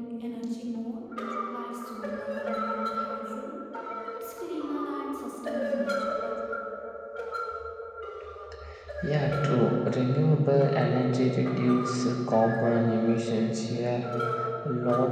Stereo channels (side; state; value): both; identical; correlation 1.00